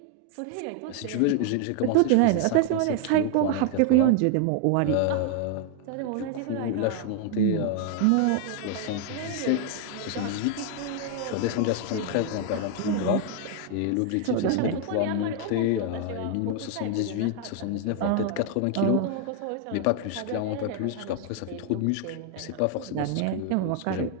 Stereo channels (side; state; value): both; different; correlation 0.00